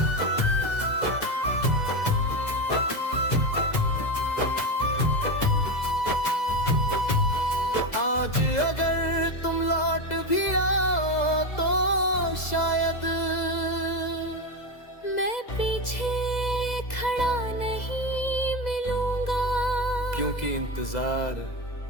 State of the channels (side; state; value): right; late; 2.0 ms